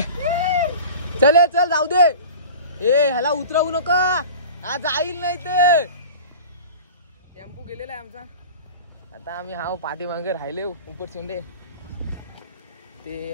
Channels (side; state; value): both; inverted; correlation -0.38